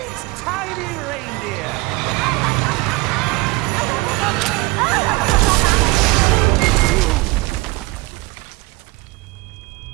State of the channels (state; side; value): quieter; left; 22.4 dB